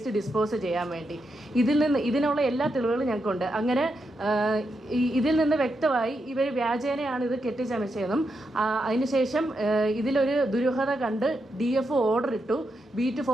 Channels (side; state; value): both; normal; correlation 0.84